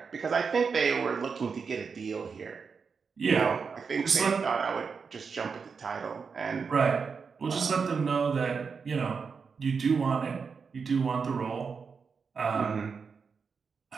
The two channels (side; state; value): left; quieter; 5.5 dB